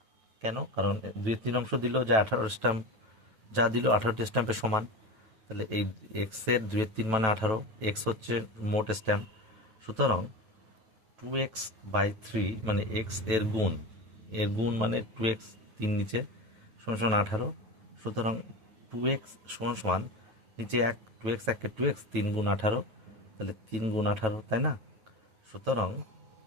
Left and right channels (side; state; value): left; late; 9.2 ms